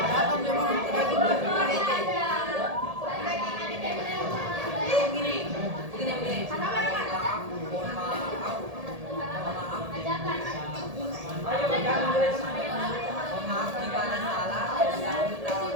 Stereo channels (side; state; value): left; late; 1.8 ms